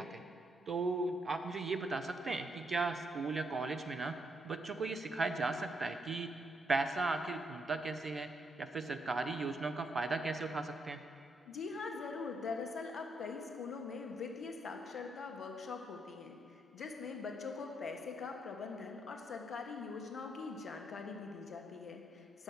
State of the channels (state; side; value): normal; both; correlation 0.77